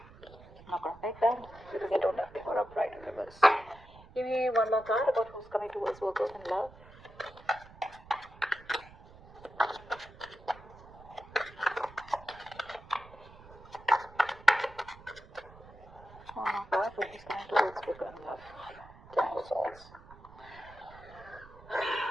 I'm not gonna take them because I don't have paper upright in reverse. Give me one more card about who's coming towards Virgo and love. Oh my god, who's coming towards Virgo and love? Ten of Swords.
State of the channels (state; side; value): noise; right; rumble, 20 dB below the sound